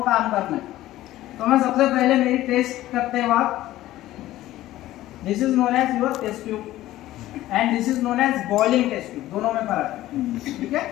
काम करना है। तो मैं सबसे पहले मेरी टेस्ट करते वक्त, this is known as your test tube and this is known as boiling test tube, दोनों में फर्क है, ठीक है।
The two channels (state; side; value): quieter; right; 15.2 dB